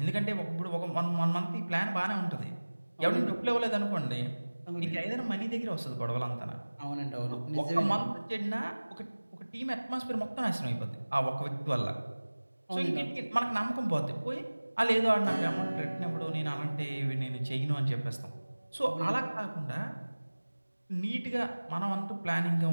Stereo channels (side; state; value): both; inverted; correlation -1.00